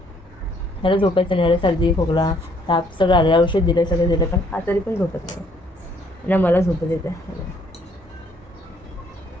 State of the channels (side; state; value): both; normal; correlation 0.65